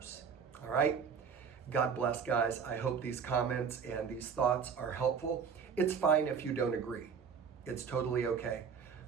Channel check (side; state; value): left; quieter; 6.5 dB